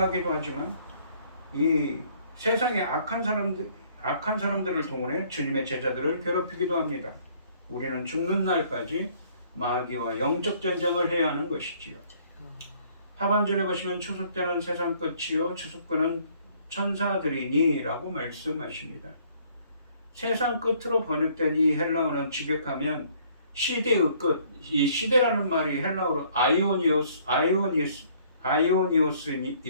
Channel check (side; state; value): both; inverted; correlation -0.61